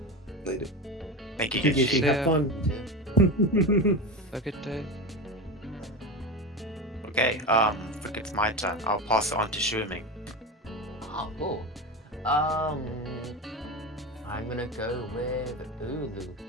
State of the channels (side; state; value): both; normal; correlation 0.22